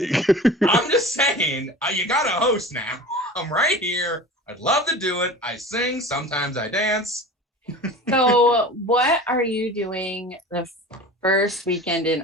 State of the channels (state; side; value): normal; both; correlation 0.36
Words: I'm just saying, you got a host now. I'm right here. I'd love to do it. I sing. Sometimes I dance. So what are you doing the first weekend in